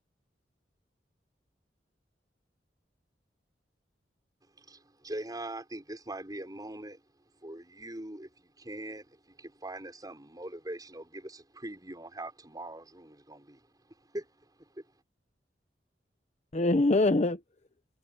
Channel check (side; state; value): both; normal; correlation 0.55